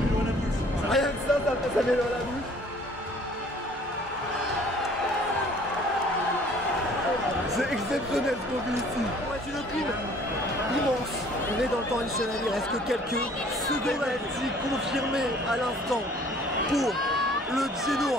à la bouche. Rien que ça met l'eau à la bouche. C'est exceptionnel ce qu'on vit ici. C'est une pile Immense. On est dans le temps additionnel, il reste que quelques secondes. Confirmé à l'instant pour le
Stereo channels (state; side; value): normal; both; correlation 0.54